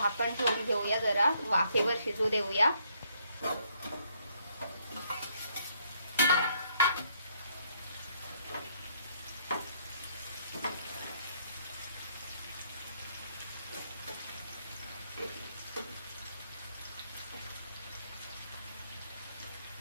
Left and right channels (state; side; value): inverted; both; correlation -0.70